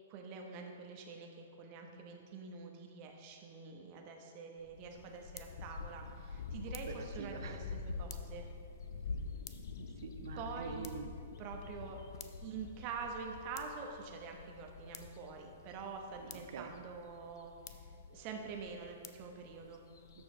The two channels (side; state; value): both; inverted; correlation -0.32